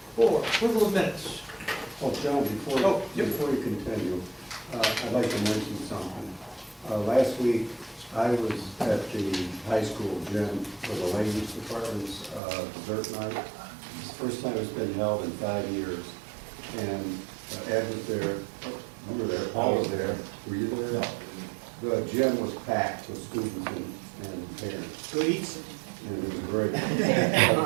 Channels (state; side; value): drops out; left; at 12.4 s